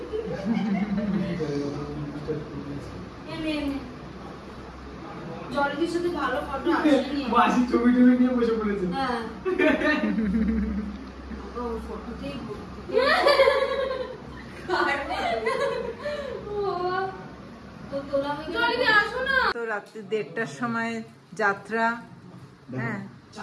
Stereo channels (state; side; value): identical; both; correlation 1.00